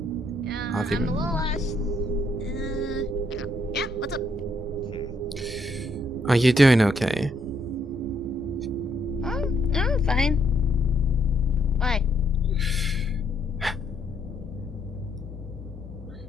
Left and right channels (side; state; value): both; normal; correlation 0.72